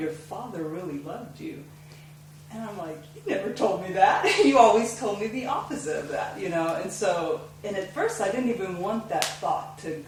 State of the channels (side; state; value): both; identical; correlation 1.00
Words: father really loved you. And I'm like, you never told me that. You always told me the opposite of that, and at first I didn't even want that thought to